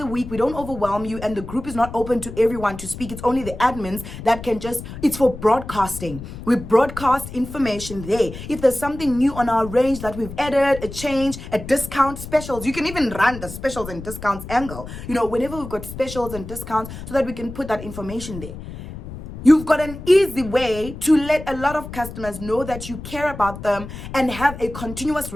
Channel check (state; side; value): noise; left; rumble, 11 dB below the sound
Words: week. We don't overwhelm you, and the group is not open to everyone to speak. It's only the admins that can it's for broadcasting. We broadcast information there. If there's something new on our range that we've added, a change, a discount, specials, you can even run the specials and discounts angle, whenever we've got specials and discounts, so that we can put that information there. You've got an easy way to let a lot of customers know that you care about them and have a continuous